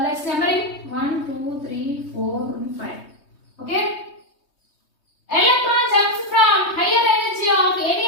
numbering 1, 2, 3, 4, and 5. Okay. Electron jumps from higher energy of any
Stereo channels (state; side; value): late; right; 3.2 ms